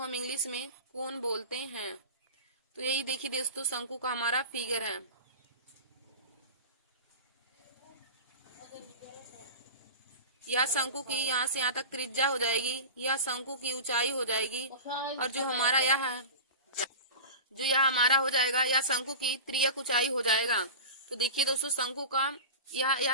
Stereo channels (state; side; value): inverted; both; correlation -0.30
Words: इंग्लिश में कोन बोलते हैं। तो यही देखिए दोस्तों, शंकु का हमारा फिगर है। यह शंकु की यहाँ से यहाँ तक त्रिज्या हो जाएगी, यह शंकु की ऊंचाई हो जाएगी, और जो हमारा यह है, जो यह हमारा हो जाएगा, यह शंकु की तिर्यक ऊंचाई हो जाएगा। तो देखिए दोस्तों, शंकु का